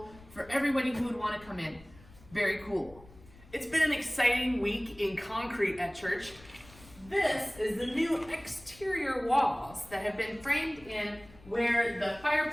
for everybody who would want to come in. Very cool. It's been an exciting week in concrete at church. This is the new exterior walls that have been framed in where the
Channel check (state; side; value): noise; left; rumble, 22 dB below the sound